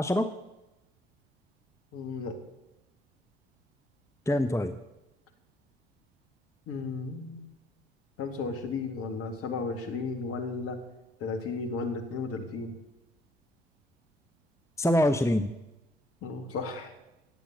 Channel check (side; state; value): both; normal; correlation 0.67